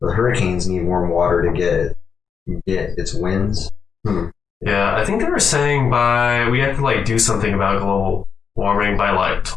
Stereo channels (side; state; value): right; quieter; 6.4 dB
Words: The hurricanes need warm water to get its winds. Yeah, I think they were saying we have to like do something about global warming by like